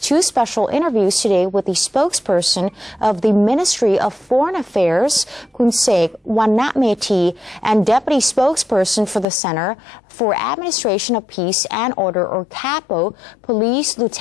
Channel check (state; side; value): drops out; right; at 9.2 s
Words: special interviews today with the spokesperson of the Ministry of Foreign Affairs, Kunsek Wanatmeti, and deputy spokesperson for the Center for Administration of Peace and Order, or CAPO, Police